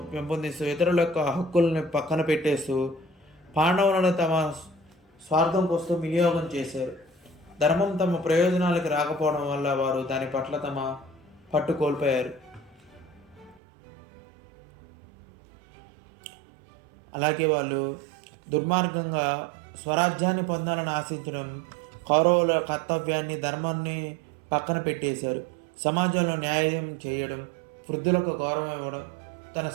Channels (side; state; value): left; drops out; at 13.6 s